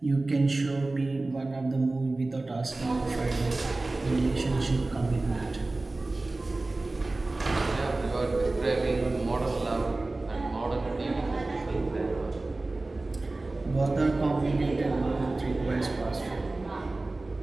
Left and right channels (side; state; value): left; quieter; 3.1 dB